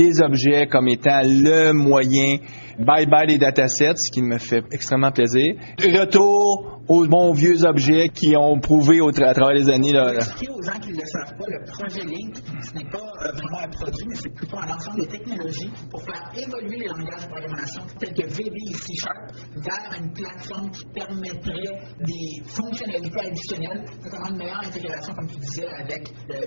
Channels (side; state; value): both; inverted; correlation -1.00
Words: objets comme étant le moyen. Bye-bye les datasets, ce qui me fait extrêmement plaisir. Retour aux bons vieux objets qui ont prouvé à travers les années. Pour expliquer aux gens qui ne le savent pas, le projet Link, ce n'est pas vraiment un produit, mais c'est plutôt un ensemble de technologies pour faire évoluer les langages de programmation tels que VB et C# vers une plateforme qui permettrait des fonctionnalités additionnelles, notamment une meilleure intégration, comme tu disais, avec le